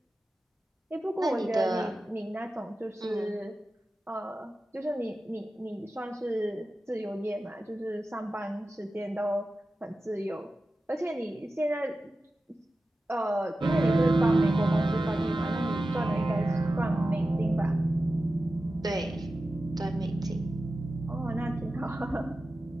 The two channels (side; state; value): both; normal; correlation 0.93